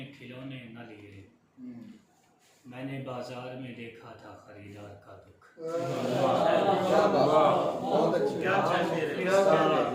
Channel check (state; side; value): identical; both; correlation 1.00